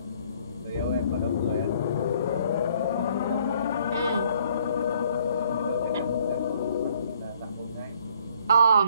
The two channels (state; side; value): inverted; both; correlation -0.62